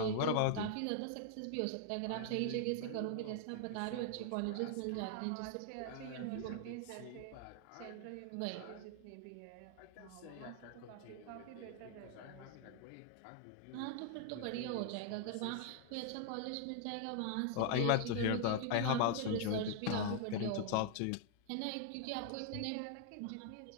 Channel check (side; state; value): both; different; correlation -0.01